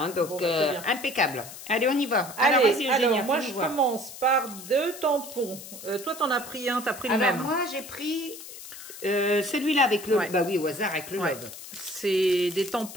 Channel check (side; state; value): left; noise; hiss, 13 dB below the sound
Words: donc, impeccable. Allez, on y va. Allez, alors moi, je commence par 2 tampons. Toi, t'en as pris un, t'as pris le même. Alors, moi, j'ai pris celui-là avec le... Bah oui, au hasard, avec le love. C'est des